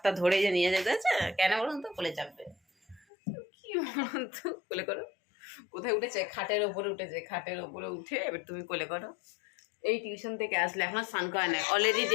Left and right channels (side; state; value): right; drops out; at 3.1 s